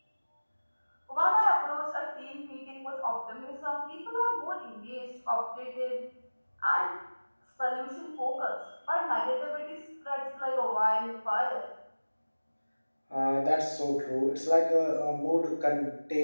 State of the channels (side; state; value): both; inverted; correlation -1.00